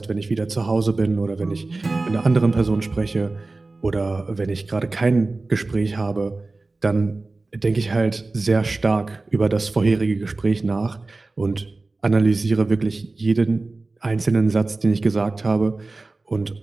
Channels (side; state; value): left; quieter; 3.4 dB